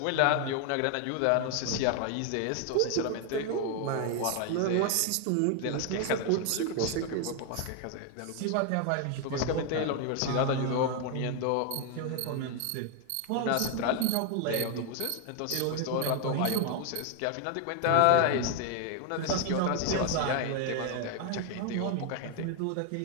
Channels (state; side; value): different; both; correlation 0.00